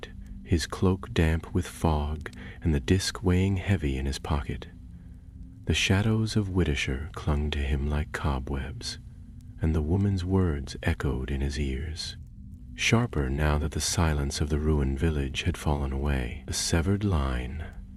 his cloak damp with fog and the disc weighing heavy in his pocket. The shadows of Whitishire clung to him like cobwebs, and the woman's words echoed in his ears. Sharper now that the silence of the ruined village had fallen away. A severed line,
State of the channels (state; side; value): identical; both; correlation 1.00